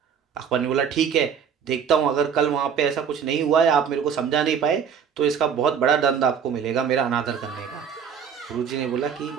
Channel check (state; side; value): quieter; left; 7.3 dB